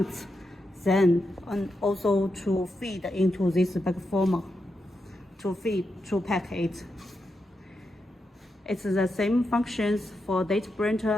Then and also to feed into this bag former, to pack it. It's the same functions for date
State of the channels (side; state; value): both; normal; correlation 0.86